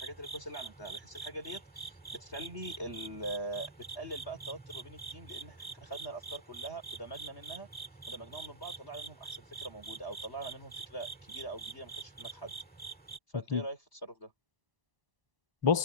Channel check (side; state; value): left; late; 1.0 ms